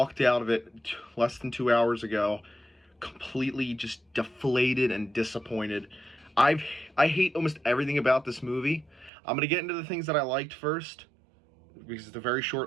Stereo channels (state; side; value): drops out; left; at 9.1 s